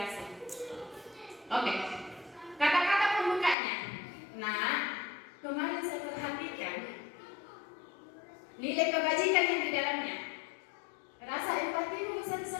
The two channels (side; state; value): right; drops out; at 3.6 s